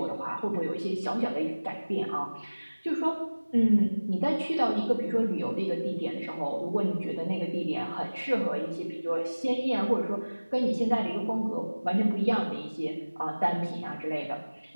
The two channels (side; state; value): both; inverted; correlation -1.00